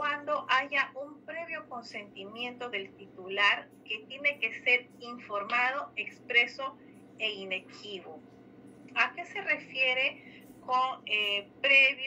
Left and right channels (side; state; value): both; identical; correlation 1.00